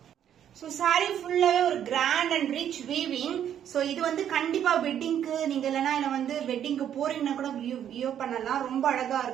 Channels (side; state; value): left; quieter; 9.8 dB